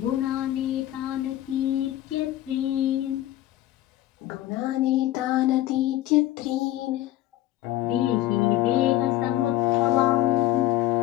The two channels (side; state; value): right; quieter; 14.7 dB